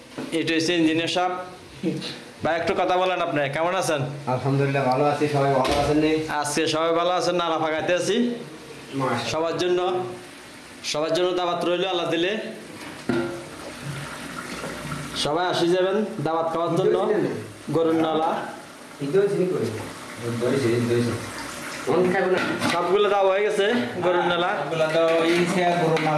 ইঞ্জিনিয়ার সাহেব। ভাই একটু কথা বলেন, আপনি কেমন আছেন? আলহামদুলিল্লাহ ভালো আছি। সবাই ভালো আছেন? আজকে সবাই ভালো আছেন। নালা ফাঁকাইতে আছি সবার জন্য দাওয়াত রইল আল্লাহ দিলে। সবাই আসি যাবেন দাওয়াত খাওয়ার জন্য। গরুর নালা সবগুলো দেওয়া হয়ে গেছে। গরুর নালা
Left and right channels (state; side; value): identical; both; correlation 1.00